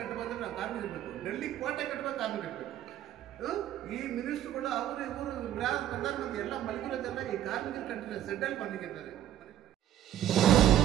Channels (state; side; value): quieter; left; 11.5 dB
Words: ಬಂದ್ರೆ ನಾವು ಕಾರ್ಮಿಕರಿರಬೇಕು, ಡೆಲ್ಲಿ ಕೋಟೆ ಕಟ್ಟಬೇಕು ಕಾರ್ಮಿಕರಿರಬೇಕು. ಈ ಮಿನಿಸ್ಟ್ರುಗಳು ಅವರು ಇವರು ಪ್ರಧಾನಮಂತ್ರಿ ಎಲ್ಲ ಮಲಗಿರೋದೆಲ್ಲ ಈ ಕಾರ್ಮಿಕರ ಕಂಟ್ರಿ ಸೆಂಟ್ರಲ್ ಬಂದಿದ್ದಾರೆ.